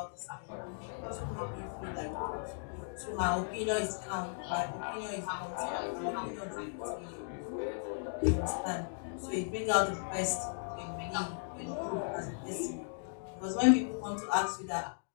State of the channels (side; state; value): right; silent; digital silence